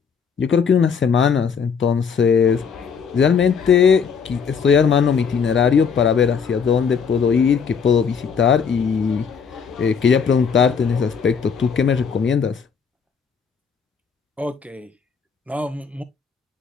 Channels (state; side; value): quieter; right; 6.3 dB